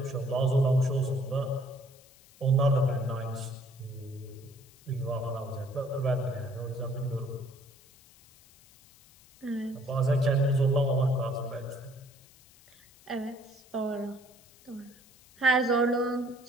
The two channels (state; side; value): noise; left; hiss, 26 dB below the sound